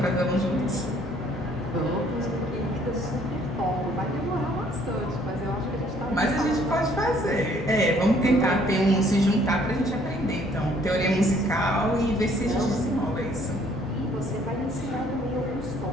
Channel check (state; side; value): normal; both; correlation 0.62